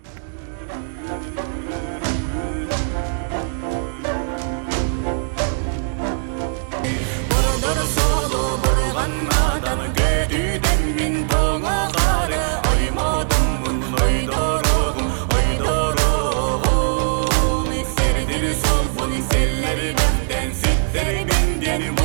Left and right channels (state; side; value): silent; left; 65 dB below the other